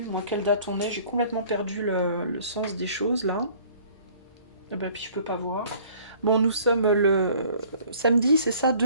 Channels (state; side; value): inverted; both; correlation -0.54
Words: moi, quelle date on est, j'ai complètement perdu le sens des choses, là. Ah bah, puis je peux pas voir. Bon, nous sommes le samedi, c'est ça,